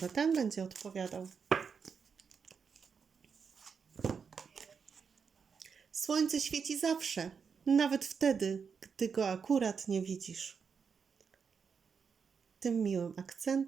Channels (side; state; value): left; quieter; 6.1 dB